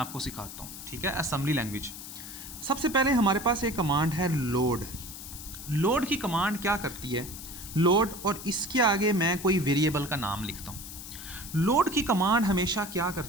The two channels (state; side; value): noise; left; hiss, 11 dB below the sound